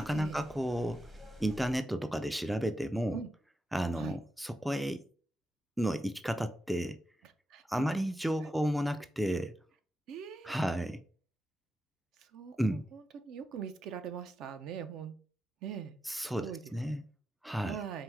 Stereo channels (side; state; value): both; normal; correlation 0.89